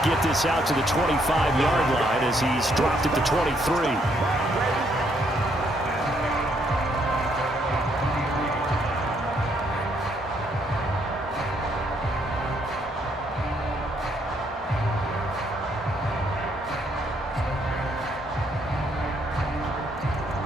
get this out to the 25-yard line as he's dropped at the 23.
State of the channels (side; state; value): both; normal; correlation 0.71